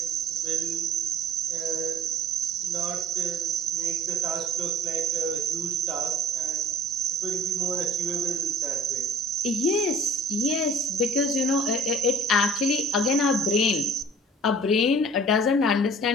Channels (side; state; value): both; normal; correlation 0.47